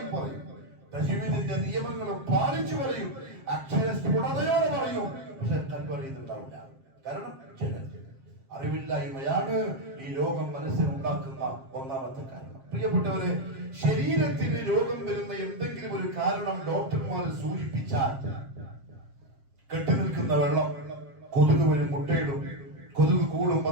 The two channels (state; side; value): late; left; 7.5 ms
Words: പറയും, തജ്വീദിന്റെ നിയമങ്ങളും പാലിച്ചു പറയും, അക്ഷരസ്ഫുടതയോടെ പറയും, പക്ഷെ കൽബ് അറിയുന്നുണ്ടാവില്ല. കാരണം അറിവില്ലായ്മയാണ് ഈ രോഗം മനസ്സിലുണ്ടാക്കുന്ന ഒന്നാമത്തെ കാരണം. പ്രിയപ്പെട്ടവരെ, ശരീരത്തിന് രോഗം വരുന്ന എന്തെങ്കിലും ഒരു കാരണം ഡോക്ടർമാർ സൂചിപ്പിച്ചാൽ, കെട്ടി നിൽക്കുന്ന വെള്ളം, കൊതുക് വരും, മുട്ടയിടും, കൊതുക് കൂടും,